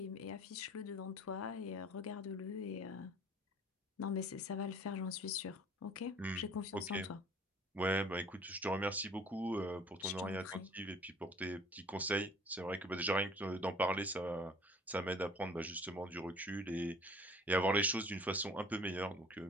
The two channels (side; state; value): both; normal; correlation 0.50